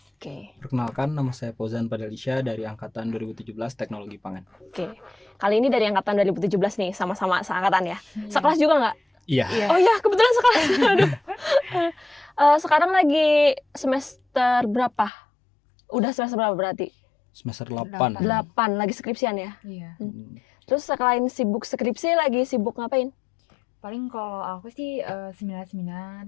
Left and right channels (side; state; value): right; drops out; at 15.1 s